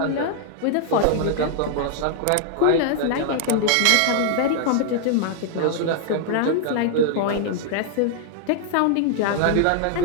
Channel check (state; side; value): different; both; correlation 0.00